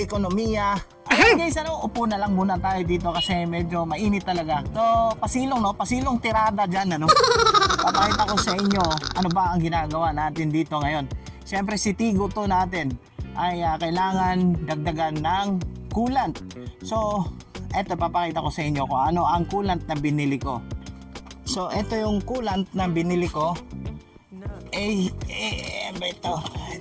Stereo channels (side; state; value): both; identical; correlation 1.00